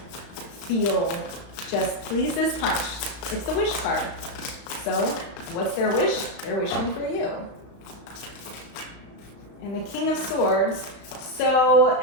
feel just please this punch. It's the wish card. So what's their wish? They're wishing for you. And the King of Swords,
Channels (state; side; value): late; right; 35 ms